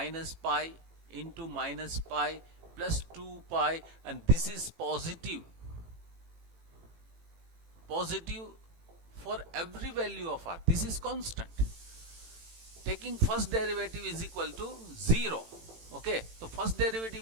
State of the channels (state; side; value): late; left; 18 ms